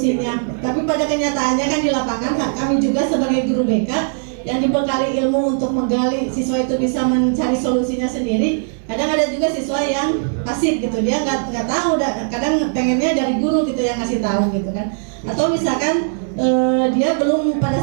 Tapi pada kenyataannya kan di lapangan kami juga sebagai guru BK yang dibekali ilmu untuk menggali siswa itu bisa mencari solusinya sendiri. Kadang ada juga siswa yang pasif gitu, dia nggak tahu, kadang pengennya dari guru gitu yang ngasih tahu gitu kan. Atau misalkan dia belum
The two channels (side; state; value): left; silent; digital silence